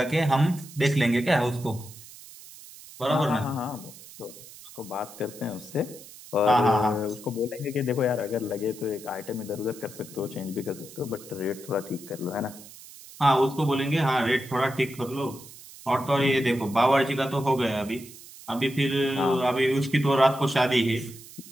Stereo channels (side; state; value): right; noise; hiss, 18 dB below the sound